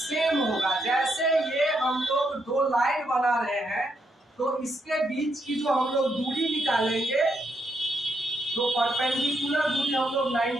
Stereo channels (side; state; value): both; normal; correlation 0.79